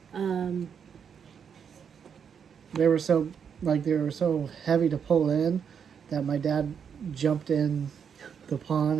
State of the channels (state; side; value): quieter; left; 7.2 dB